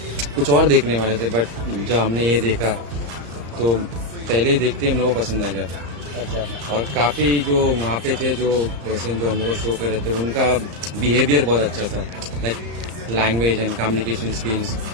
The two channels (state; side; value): late; left; 34 ms